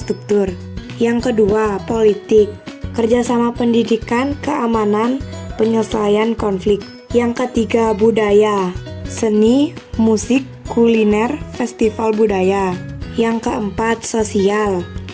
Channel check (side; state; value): both; identical; correlation 1.00